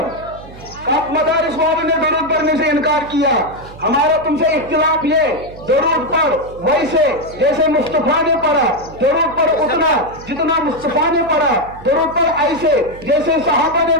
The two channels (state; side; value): noise; right; hum, 18 dB below the sound